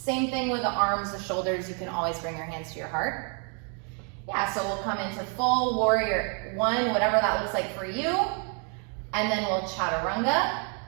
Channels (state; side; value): quieter; left; 38.6 dB